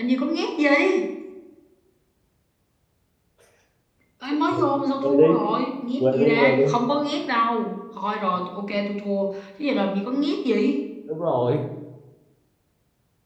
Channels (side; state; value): both; identical; correlation 1.00